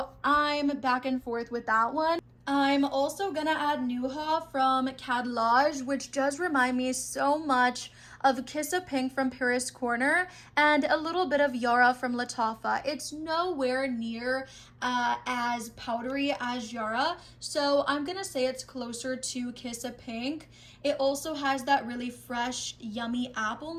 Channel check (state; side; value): identical; both; correlation 1.00